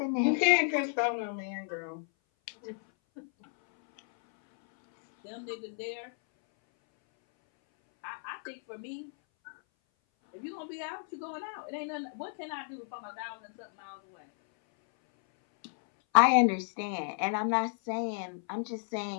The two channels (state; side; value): silent; right; 56 dB below the other